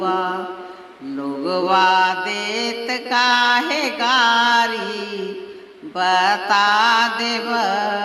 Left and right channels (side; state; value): both; identical; correlation 1.00